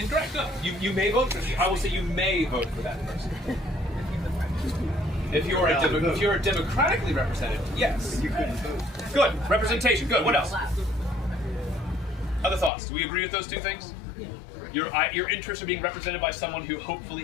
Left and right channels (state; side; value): drops out; right; at 12.7 s